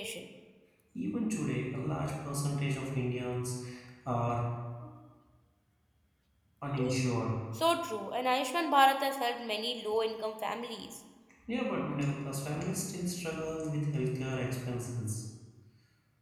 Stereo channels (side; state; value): both; identical; correlation 1.00